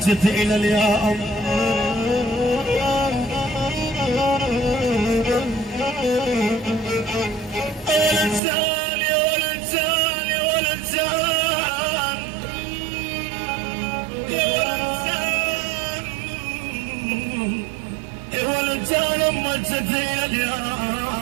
الى اليوم والانسان يا والانسان يا والانسان يا والانسان يا والانسان مجت الى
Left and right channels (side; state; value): left; drops out; at 8.4 s